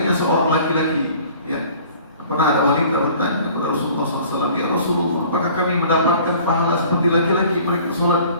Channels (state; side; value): inverted; both; correlation -0.50